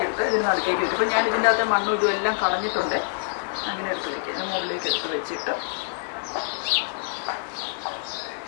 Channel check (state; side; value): silent; right; 61 dB below the other